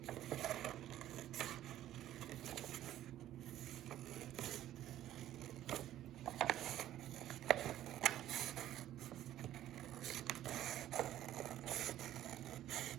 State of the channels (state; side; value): quieter; left; 12.8 dB